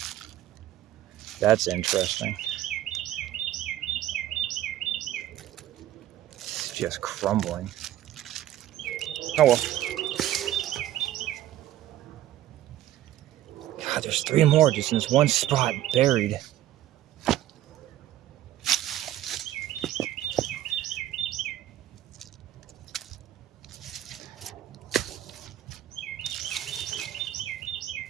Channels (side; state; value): left; quieter; 13.3 dB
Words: That's interesting. It's just crumbling. Oh well. God, there's 3 more just in this one spot buried.